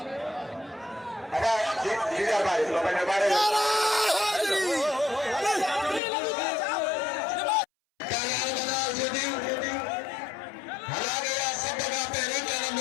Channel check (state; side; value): drops out; right; at 6.0 s